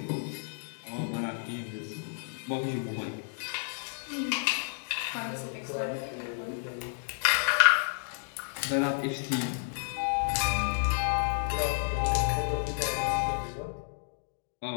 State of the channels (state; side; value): silent; right; digital silence